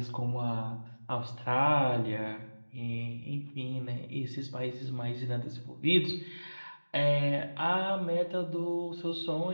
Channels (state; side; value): inverted; both; correlation -1.00